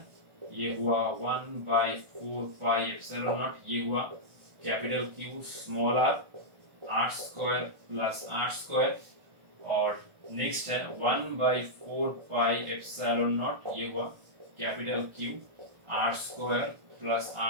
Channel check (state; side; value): late; left; 1.4 ms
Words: ये हुआ 1/4 पाई एप्सिलॉन नॉट, ये हुआ capital Q small r square plus r square. और नेक्स्ट है 1/4 पाई एप्सिलॉन नॉट, ये हुआ capital Q r square plus